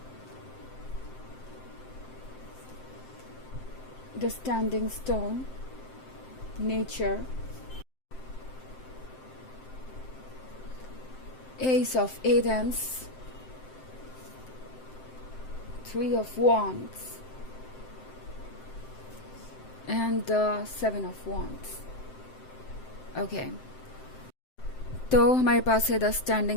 The standing stone, nature, Ace of Athens, Three of Wands, and the Seven of Wands. Okay. तो हमारे पास है द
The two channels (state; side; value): late; right; 7.7 ms